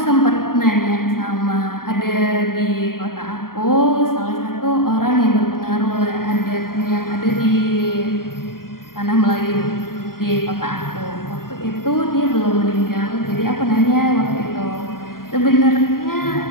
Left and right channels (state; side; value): late; right; 0.92 ms